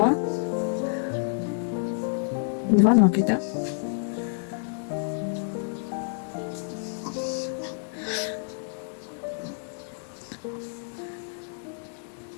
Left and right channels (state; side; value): silent; right; digital silence